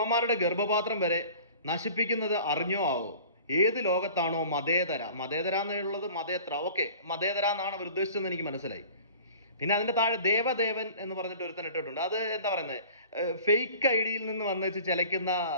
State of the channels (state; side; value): inverted; both; correlation -0.45